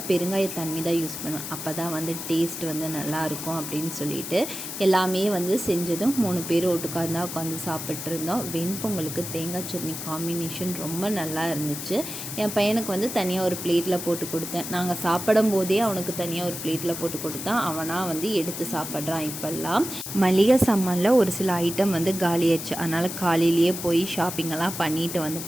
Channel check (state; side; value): noise; left; hiss, 7 dB below the sound